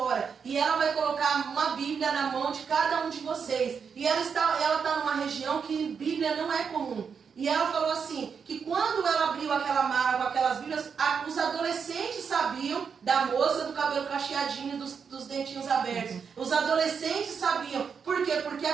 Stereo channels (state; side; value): quieter; left; 6.3 dB